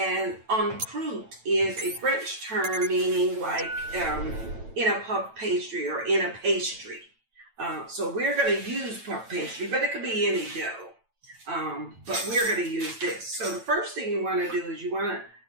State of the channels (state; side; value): late; left; 9.0 ms